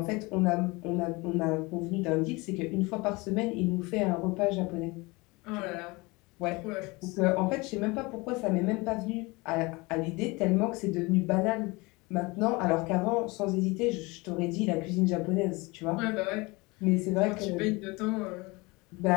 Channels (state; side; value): quieter; right; 24.6 dB